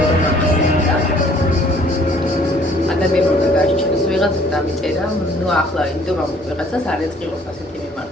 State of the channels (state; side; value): normal; both; correlation 0.58